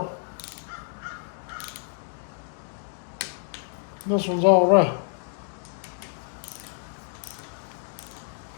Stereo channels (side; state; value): right; silent; digital silence